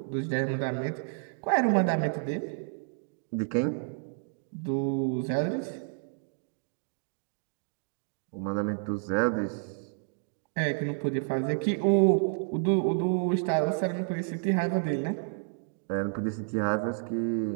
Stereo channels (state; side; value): silent; left; digital silence